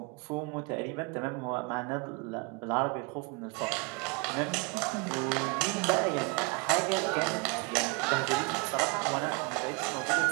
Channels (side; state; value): left; quieter; 29.5 dB